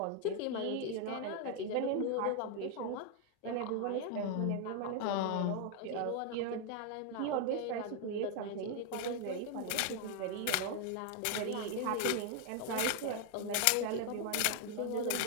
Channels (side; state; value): both; different; correlation 0.00